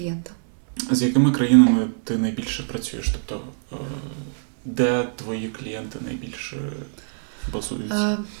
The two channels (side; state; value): left; silent; digital silence